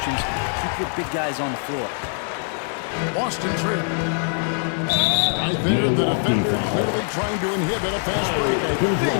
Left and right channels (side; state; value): right; silent; 59 dB below the other